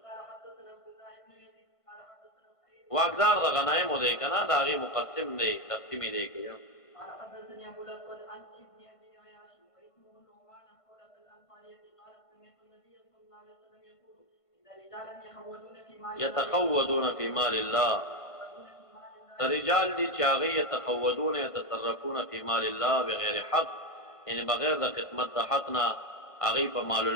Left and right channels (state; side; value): late; right; 1.5 ms